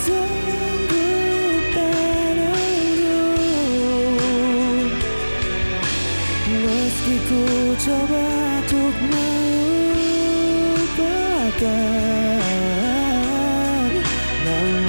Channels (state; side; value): inverted; both; correlation -1.00